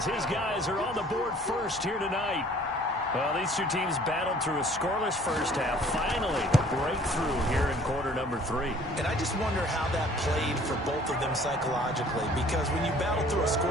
his guys are on the board first here tonight. Well, these two teams battled through a scoreless first half. Finally, a breakthrough here in quarter number 3. And I just wonder how that played for both of them psychologically, because when you battle through a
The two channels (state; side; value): normal; both; correlation 0.54